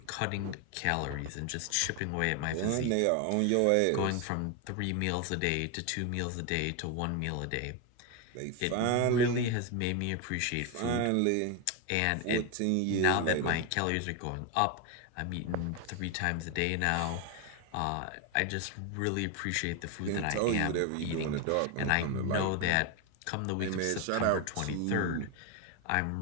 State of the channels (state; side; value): different; both; correlation 0.01